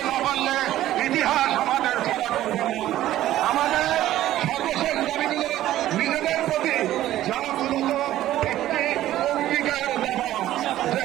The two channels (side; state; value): left; quieter; 13.8 dB